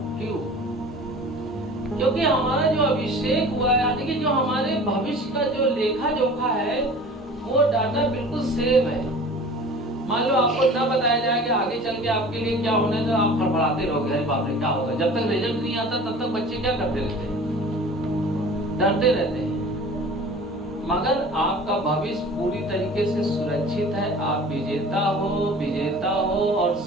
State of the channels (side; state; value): both; normal; correlation 0.42